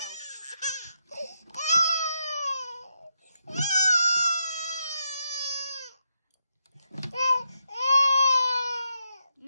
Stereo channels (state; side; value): inverted; both; correlation -0.82